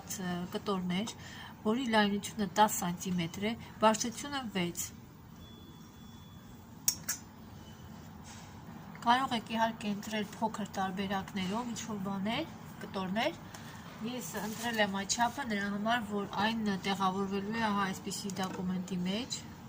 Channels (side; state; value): both; identical; correlation 1.00